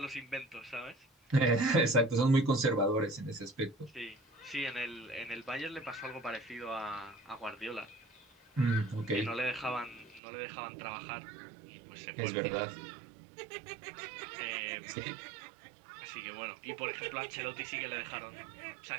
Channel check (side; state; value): left; drops out; at 10.2 s